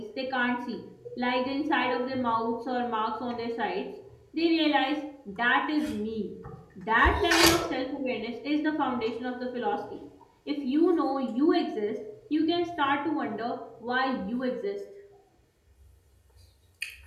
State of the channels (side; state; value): both; identical; correlation 1.00